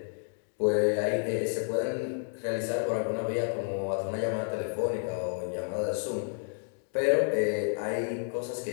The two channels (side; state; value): right; silent; 57 dB below the other